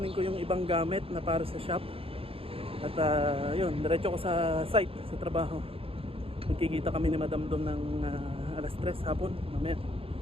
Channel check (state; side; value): late; left; 0.27 ms